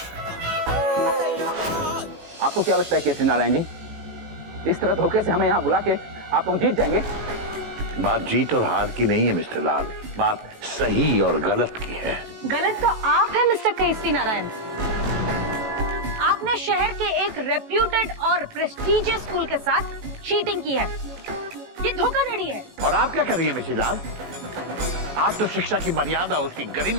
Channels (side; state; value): left; late; 18 ms